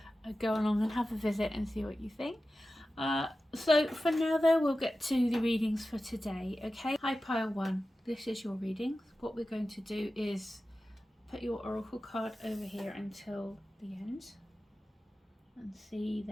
go along and have a visit and see what you think. So for now though, we'll get to the readings for today. Okay, hi pile one, this is your readings. What we're going to do is put your oracle card over here until the end and see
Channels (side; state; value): both; normal; correlation 0.94